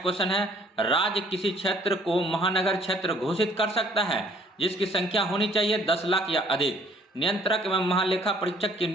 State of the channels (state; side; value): normal; both; correlation 0.59